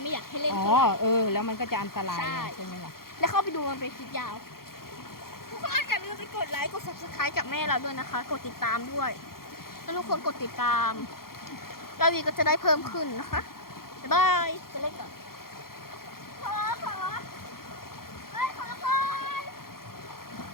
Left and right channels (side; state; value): right; late; 0.93 ms